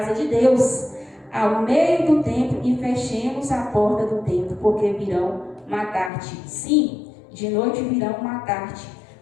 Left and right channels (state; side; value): drops out; right; at 6.1 s